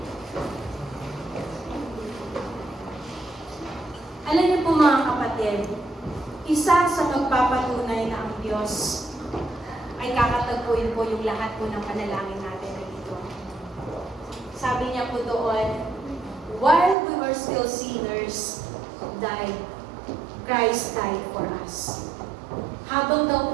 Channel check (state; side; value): drops out; left; at 16.9 s